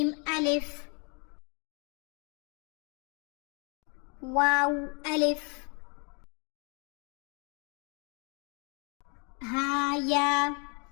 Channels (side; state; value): right; quieter; 34.5 dB